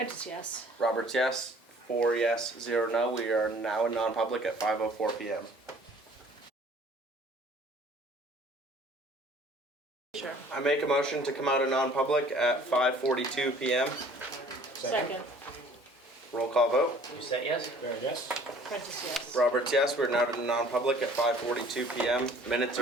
yes. Roberts, yes. 4 yes, 0 no. We are now in non-public at 5:04 p.m. Sure. I make a motion to come out of non-public at 5:42 p.m. Second. Roll call vote. You said yes? Fair, yes. Prentice, yes. Roberts, yes. We're now in non-public at 5:42 p.m. Minutes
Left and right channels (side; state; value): both; normal; correlation 0.53